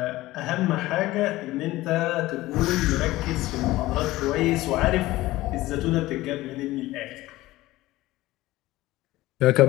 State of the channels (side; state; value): right; quieter; 17.7 dB